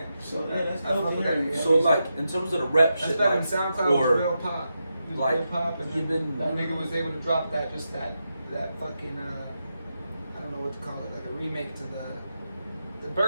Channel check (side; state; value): both; inverted; correlation -0.87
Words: So yeah, that's I fuck dope. with to that hear. nigga. So like in terms of the rap That's shit, that like, in SoundCloud was real pop. It was like, real pop, and even- that nigga was able to drop that fucking I don't know what to call it, like a remake to the